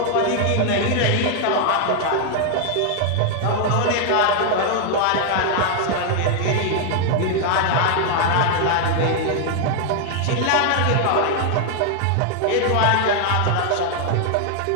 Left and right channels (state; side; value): different; both; correlation 0.00